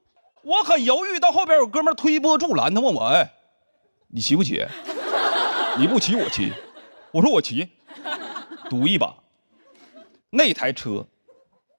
我很犹豫。到后边有哥们推波助澜，他问我：“哎，你骑不骑？你不骑我骑。”我说：“我骑，赌一把。”那台车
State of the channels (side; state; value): both; inverted; correlation -1.00